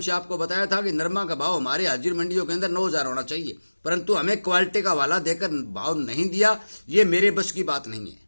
से आपको बताया था कि नरमा का भाव हमारे हाजिर मंडियों के अंदर 9,000 होना चाहिए, परंतु हमें क्वालिटी का वाला देकर भाव नहीं दिया। ये मेरे बस की बात नहीं है।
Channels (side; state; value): both; inverted; correlation -1.00